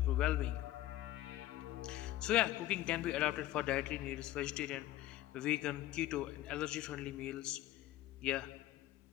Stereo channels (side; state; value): right; quieter; 14.9 dB